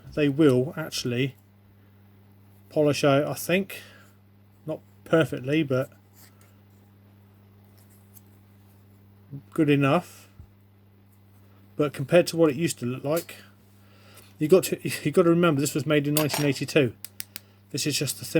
They will actually polish out, I think. Not perfectly, but good enough. But compared to what it used to look like, you got to remember this was made in 1982. This is just a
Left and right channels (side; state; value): both; identical; correlation 1.00